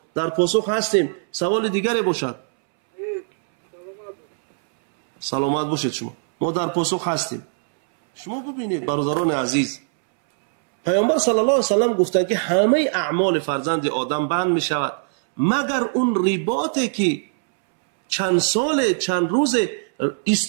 در پاسخ هستیم. سوال دیگری باشد. سلامت باشید شما. ما در پاسخ هستیم. شما ببینید برادران عزیز، پیامبر صلی الله علیه و سلم گفتند که همه اعمال فرزند آدم بند می شود مگر اون رباطی که چند سال چند روز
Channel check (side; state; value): left; silent; 65 dB below the other